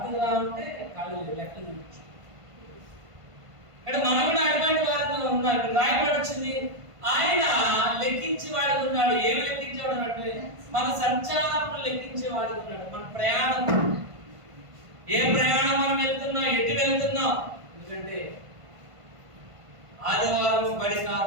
రావాలంటే కాళ్ళు లెక్కలు చూపించు. ఇక్కడ మనం కూడా అటువంటి వారిలో ఉన్నాడు. రాయబడి వచ్చింది, ఆయన లెక్కించేవాడు ఉన్నాడు. ఏమి లెక్కించేవాడు అంటే మన సంచారం లెక్కించేవాడు ఉన్నాడు. మన ప్రయాణం, ఏ ప్రయాణం మనం వెళ్తున్నాం, ఎటు వెళ్తున్నాం. ఎందుకంటే ఆదివారం బడి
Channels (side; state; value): left; late; 1.5 ms